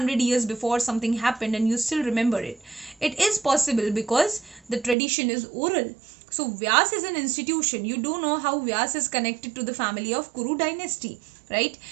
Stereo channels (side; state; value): left; drops out; at 5.0 s